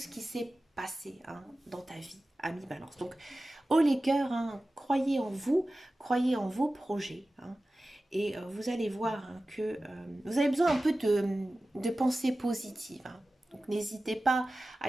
qui s'est passé hein, dans ta vie, ami Balance. Donc, haut les cœurs, hein, croyez en vous, croyez en vos projets. Hein, et vous allez voir hein, que vous avez besoin un peu de pensée positive. Hein. Donc, n'hésitez pas à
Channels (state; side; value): normal; both; correlation 0.96